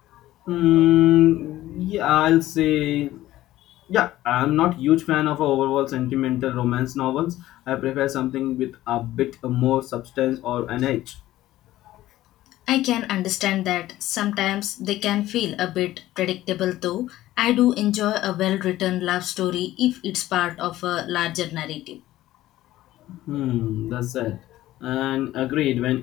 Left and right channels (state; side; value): quieter; right; 15.1 dB